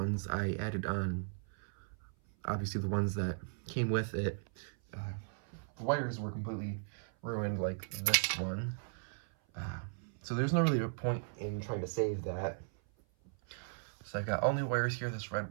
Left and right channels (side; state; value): left; silent; 53 dB below the other